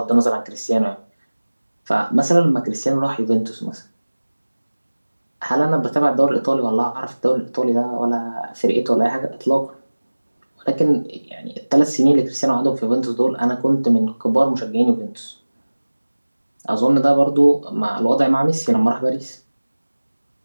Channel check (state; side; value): inverted; both; correlation -1.00